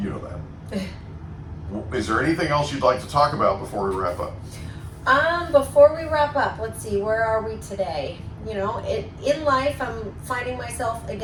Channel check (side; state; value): both; identical; correlation 1.00